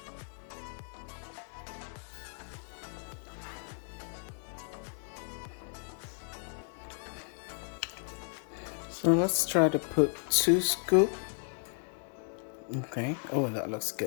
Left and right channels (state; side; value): silent; right; 55 dB below the other